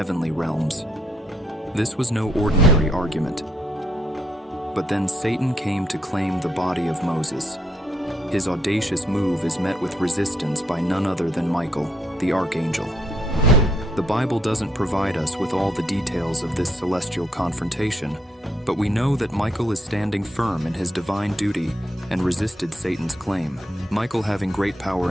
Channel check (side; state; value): both; normal; correlation 0.74